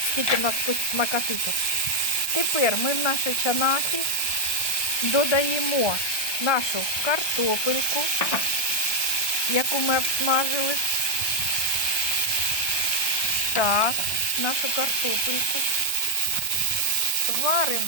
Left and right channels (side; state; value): right; late; 1.2 ms